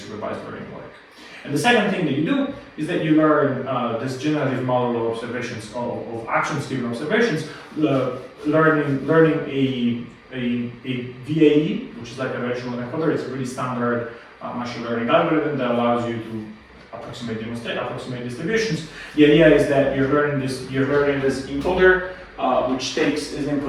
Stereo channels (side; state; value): both; identical; correlation 1.00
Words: learning work. And the second thing that you do is that you learn this generative model of observations, of actions-driven observations, learning a VAE, which is like a relational encoder. It's a really standard machine learning algorithm that allows you to approximate distributions. The idea is that you're learning this encoder, which takes as